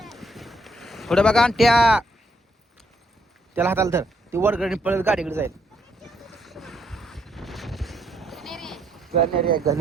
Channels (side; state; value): both; normal; correlation 0.73